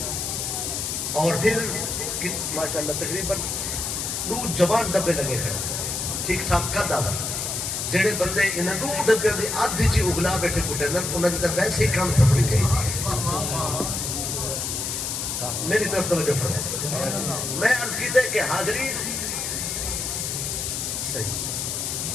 اور پھر ماشاءاللہ تقریباً 2 جوان ڈبے لگے ہیں ٹھیک ٹھاک قد آدھا، جڑے بندے انہیں 2 ڈبے دی آدھی چی اگلا بیٹھے کٹے انہوں نے ویسے ہی کام سفری چاہیے۔ میری طرف توجہ فرمائے، میں عرض کی تھے کہ حاضرین صحیح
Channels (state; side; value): noise; left; hiss, 2 dB below the sound